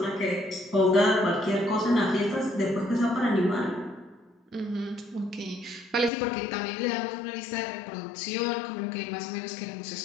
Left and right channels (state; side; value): drops out; right; at 6.1 s